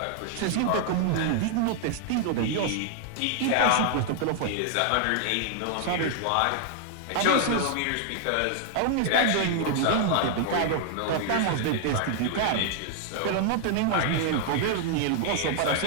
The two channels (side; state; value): both; different; correlation 0.00